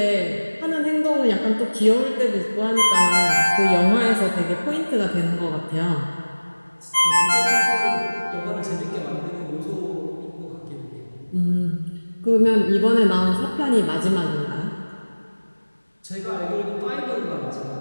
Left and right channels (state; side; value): inverted; both; correlation -1.00